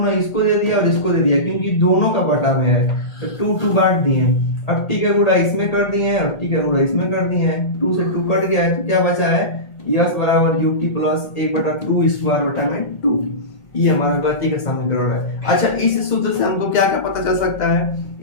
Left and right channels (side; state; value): right; late; 1.9 ms